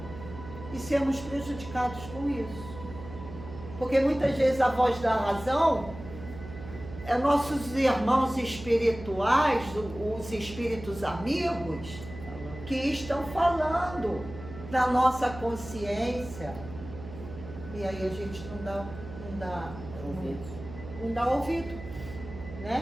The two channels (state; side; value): noise; right; hum, 13 dB below the sound